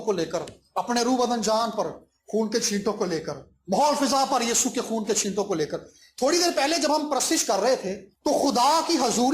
کو لے کر, اپنے روح بدن جان پر خون کے چھینٹوں کو لے کر, ماحول فضا پر یسوع کے خون کے چھینٹوں کو لے کر. تھوڑی دیر پہلے جب ہم پرستش کر رہے تھے تو خدا کی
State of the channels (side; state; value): both; identical; correlation 1.00